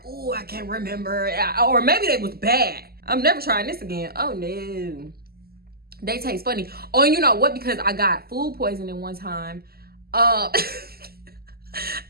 Oh, I can't remember. Or maybe they was bad. I'm never trying this again. Oh no. They taste funny. Oh, you know what? Because I got food poisoning one time. I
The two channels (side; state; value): left; late; 0.45 ms